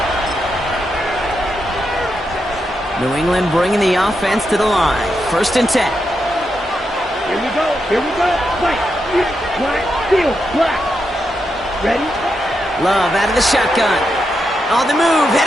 New England bringing the offense to the line. First and 10. Here we go. Black, field, black. Ready? Love out of the shotgun. On the move,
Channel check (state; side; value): normal; both; correlation 0.85